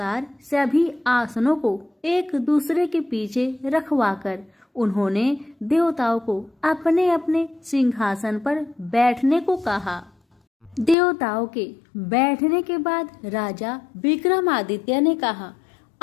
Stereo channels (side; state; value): right; drops out; at 11.0 s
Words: सभी आसनों को एक दूसरे के पीछे रखवाकर उन्होंने देवताओं को अपने अपने सिंहासन पर बैठने को कहा। देवताओं के बैठने के बाद राजा विक्रमादित्य ने कहा,